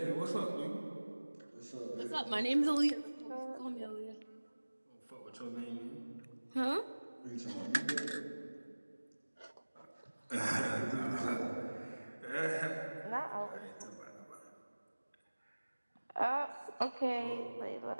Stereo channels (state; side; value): inverted; both; correlation -1.00